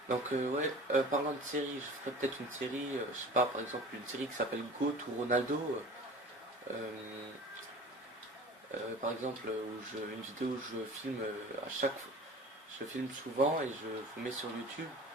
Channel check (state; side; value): normal; both; correlation 0.40